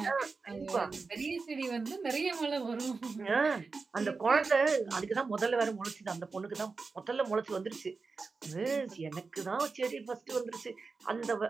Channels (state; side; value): quieter; left; 4.4 dB